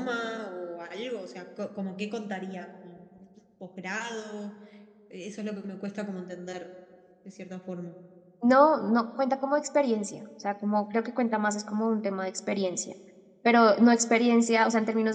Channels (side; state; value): both; identical; correlation 1.00